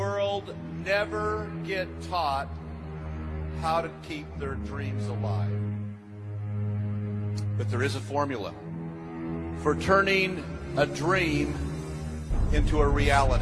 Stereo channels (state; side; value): identical; both; correlation 1.00